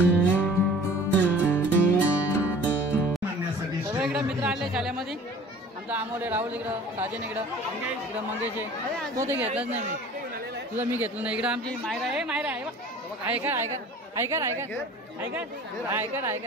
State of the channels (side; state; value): both; normal; correlation 0.46